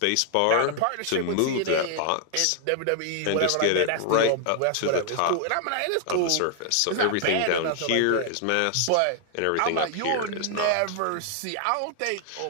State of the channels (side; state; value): both; different; correlation 0.00